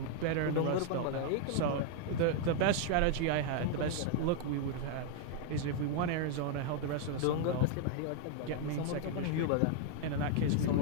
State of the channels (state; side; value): different; both; correlation 0.00